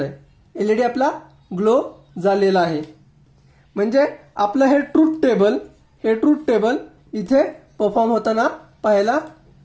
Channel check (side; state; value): both; identical; correlation 1.00